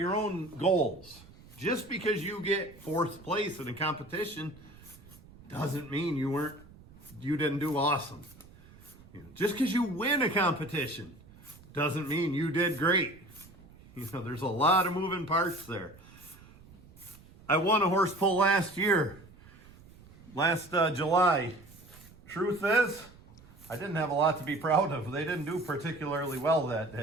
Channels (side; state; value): right; noise; rumble, 22 dB below the sound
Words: own goals. Just because you get fourth place in a competition doesn't mean you didn't do awesome. You know, just because you win a competition doesn't mean you did great. You know, there's a lot of moving parts there. I won a horse pull last July. Truth is, I didn't have a lot to be proud of. They didn't do particularly well that